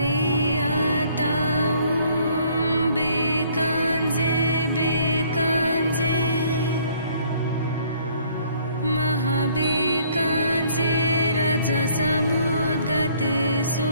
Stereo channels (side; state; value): both; inverted; correlation -0.61